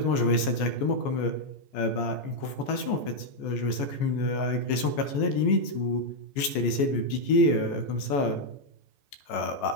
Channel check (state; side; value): late; right; 14 ms